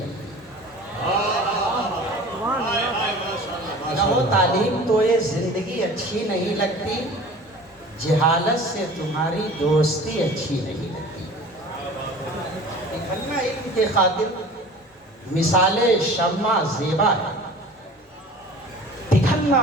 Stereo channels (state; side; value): normal; both; correlation 0.42